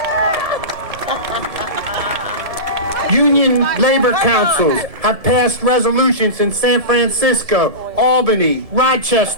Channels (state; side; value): late; left; 1.7 ms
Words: Union labor councils have passed resolutions in San Francisco, Albany,